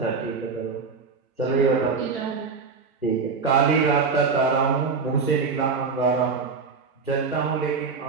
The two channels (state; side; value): quieter; left; 5.0 dB